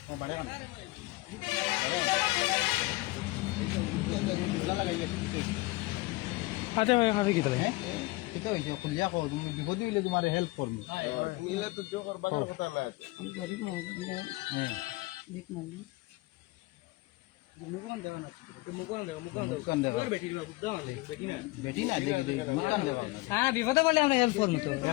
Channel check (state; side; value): quieter; right; 22.1 dB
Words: হাতে খাবে কি তাহলে এটা হইছে খুলিয়া কও তুমি বিপদে হইলে তোমারে হেল্প করব নিলে তো জো করবার কথা না আমি গরিব মানুষ দিক মানি মুকুন দেওয়া না তো মুকুন দেওয়া বেটি না মুকুন দেওয়া হ্যাঁ বিপদে বলে আমরা হেল্প করব তো